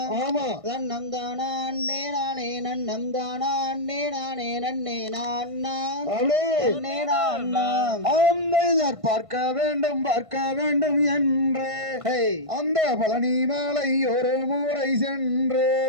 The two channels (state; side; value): late; left; 1.5 ms